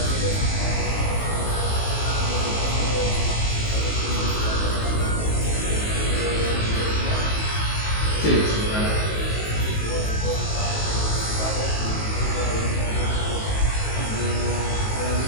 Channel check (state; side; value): late; right; 19 ms